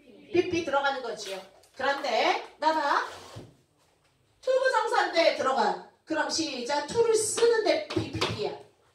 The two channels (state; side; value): identical; both; correlation 1.00